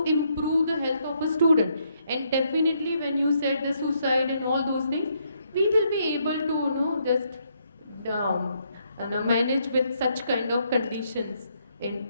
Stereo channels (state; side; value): inverted; both; correlation -0.74